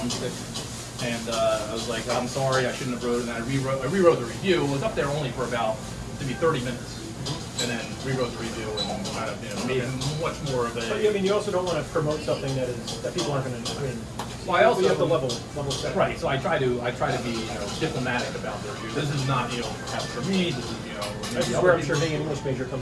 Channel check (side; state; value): both; identical; correlation 1.00